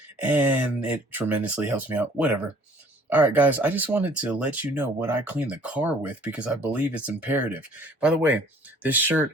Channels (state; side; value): normal; both; correlation 0.55